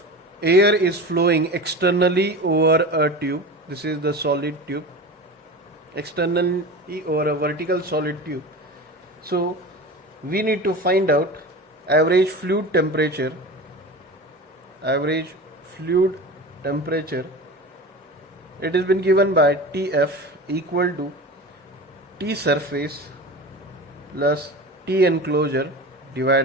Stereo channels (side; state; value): both; normal; correlation 0.31